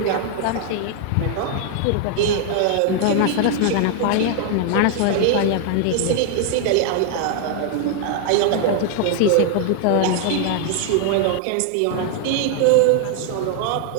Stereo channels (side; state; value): both; different; correlation 0.00